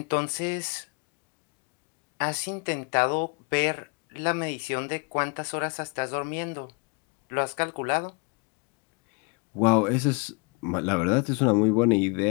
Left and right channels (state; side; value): quieter; right; 32.4 dB